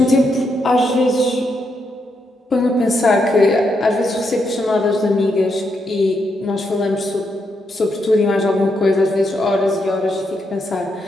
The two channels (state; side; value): normal; both; correlation 0.80